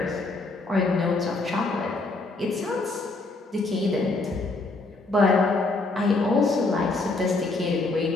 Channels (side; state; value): right; quieter; 3.3 dB